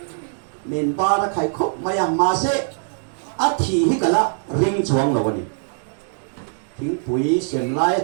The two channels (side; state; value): left; silent; digital silence